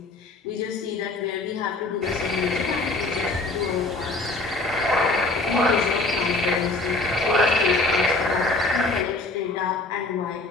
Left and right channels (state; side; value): quieter; right; 3.2 dB